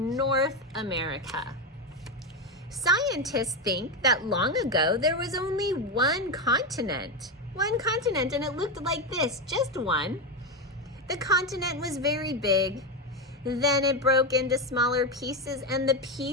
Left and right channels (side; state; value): both; normal; correlation 0.12